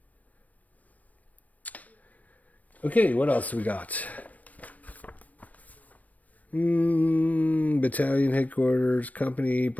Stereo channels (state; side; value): late; right; 0.072 ms